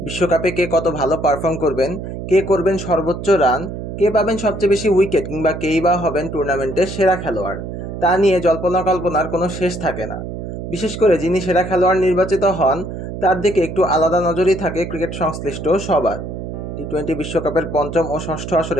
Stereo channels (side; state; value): right; noise; hum, 7 dB below the sound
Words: বিশ্বকাপে কে কত ভালো পারফর্ম করবেন, কে করবেন সর্বোচ্চ রান, কে পাবেন সবচেয়ে বেশি উইকেট, কিংবা কেই বা হবেন টুর্নামেন্টের সেরা খেলোয়াড়, তা নিয়ে জল্পনা কল্পনার কোনো শেষ থাকে না। বিশেষ করে যিনি সেরা খেলোয়াড় নির্বাচিত হন তার দিকে একটু আলাদা নজরই থাকে ক্রিকেট সংশ্লিষ্ট সবার। টি-20 বিশ্বকাপের পঞ্চম ও ষষ্ঠ